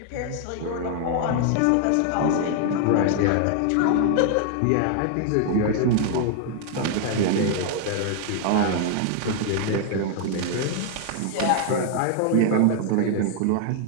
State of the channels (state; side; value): different; both; correlation 0.00